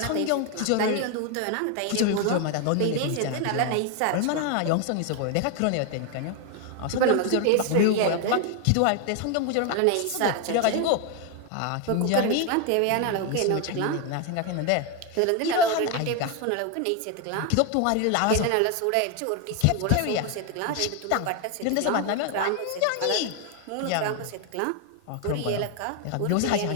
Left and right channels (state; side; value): different; both; correlation 0.01